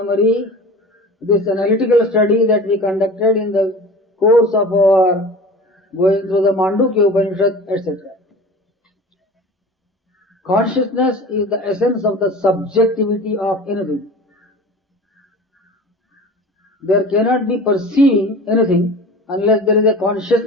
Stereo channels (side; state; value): both; normal; correlation 0.37